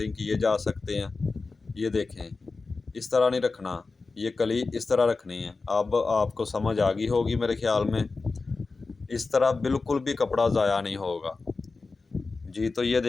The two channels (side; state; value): right; quieter; 4.0 dB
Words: किए जा सकते हैं। ये देखें, इस तरह नहीं रखना, ये कली इस तरह रखनी है। अब आपको समझ आ गई होगी मेरे ख्याल में। इस तरह बिल्कुल भी कपड़ा ज़ाया नहीं होगा जी। तो ये